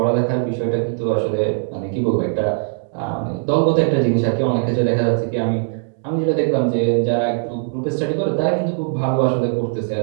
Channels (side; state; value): left; silent; digital silence